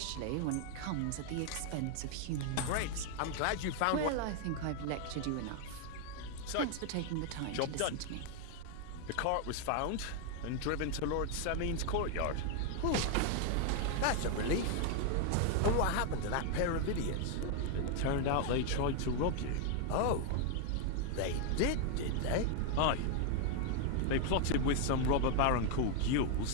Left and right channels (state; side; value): different; both; correlation 0.01